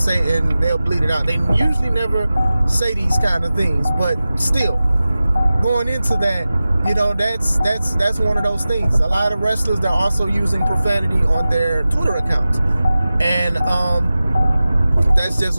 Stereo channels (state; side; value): inverted; both; correlation -0.96